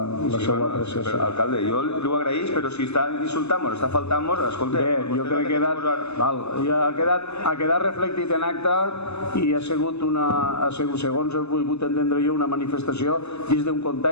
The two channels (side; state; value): right; late; 0.80 ms